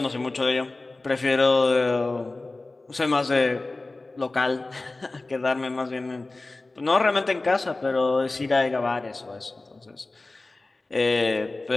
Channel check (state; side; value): quieter; right; 3.2 dB